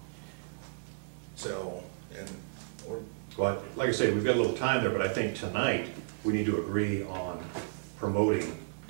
So, Well, like I say, we've got a little time there, but I think tonight, we need to agree on promoting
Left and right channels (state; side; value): silent; left; digital silence